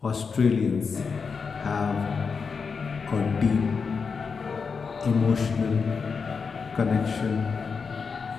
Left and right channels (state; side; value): quieter; right; 5.4 dB